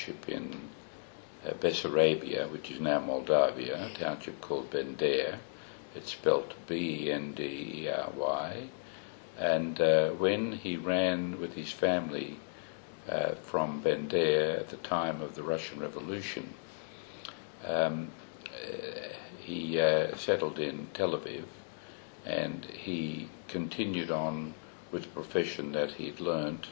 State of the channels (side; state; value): right; silent; digital silence